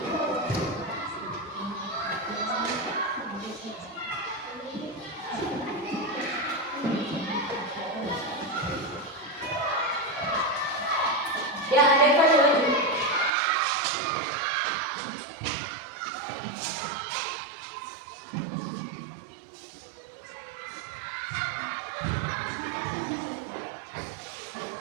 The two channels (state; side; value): drops out; left; at 13.3 s